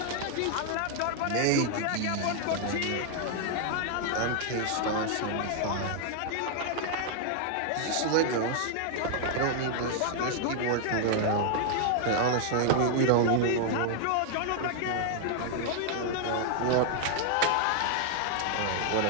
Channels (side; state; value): both; different; correlation 0.00